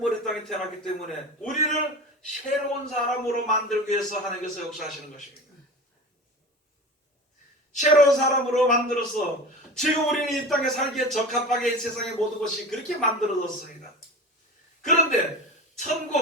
이 땅에 태어났기 때문에 우리를 새로운 사람으로 만들기 위해서 하나님께서 역사하시는 것입니다. 새로운 사람으로 만들어서 지금 우리는 이 땅에 살기에 적합하게 세상의 모든 것이 그렇게 만들어졌습니다. 그런데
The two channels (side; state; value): both; normal; correlation 0.32